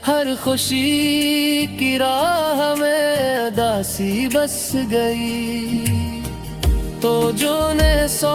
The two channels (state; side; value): identical; both; correlation 1.00